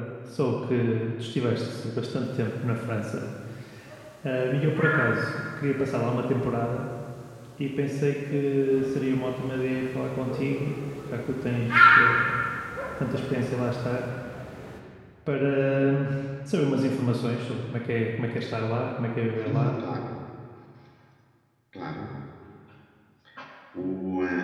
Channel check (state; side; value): identical; both; correlation 1.00